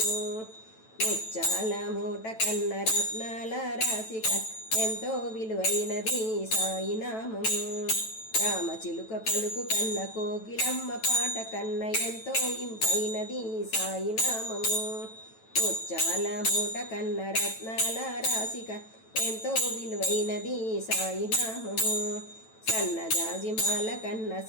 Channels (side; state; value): right; late; 9.1 ms